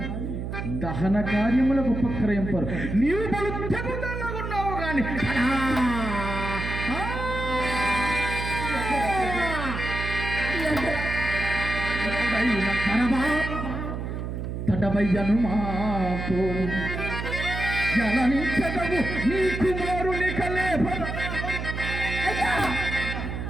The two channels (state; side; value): noise; right; hum, 5 dB below the sound